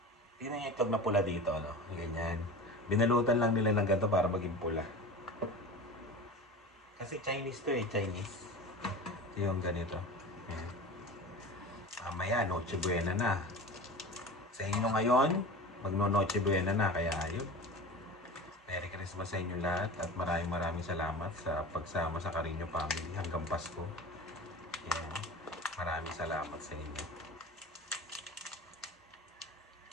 Tingnan niya itlog na pula dito, ano? Ganyan. Binalutan lang nila ng ganito para maging pula. Kasi Chinese to eh, Chinese. Ito yung ganito. Ayan. Mamaya, Noche Buena na. Sa inyo ngayon, magno-Noche Buena na. Kaya ayun. Merry Christmas sa inyo lahat at maraming salamat sa pagsama sa Carino Family hanggang Pasko. Ayan. Maraming salamat sa inyo.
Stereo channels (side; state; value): both; normal; correlation 0.33